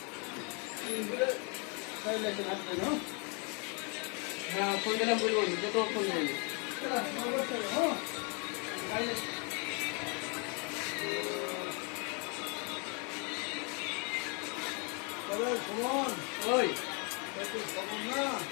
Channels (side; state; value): right; quieter; 34.7 dB